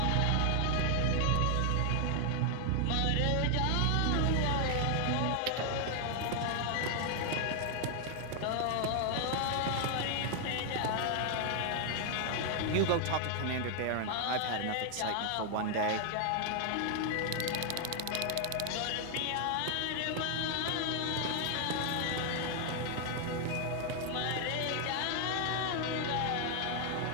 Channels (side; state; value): both; different; correlation 0.00